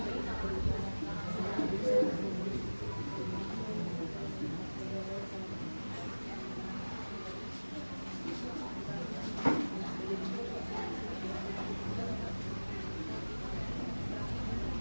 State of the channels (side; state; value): both; inverted; correlation -1.00